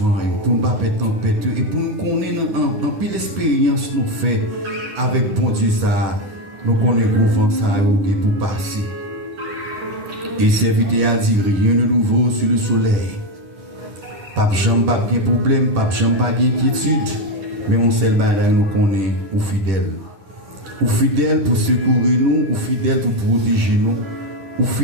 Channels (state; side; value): late; left; 10 ms